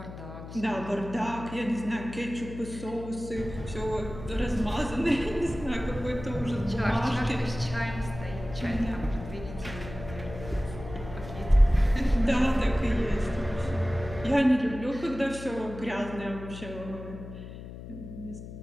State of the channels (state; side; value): noise; left; hum, 12 dB below the sound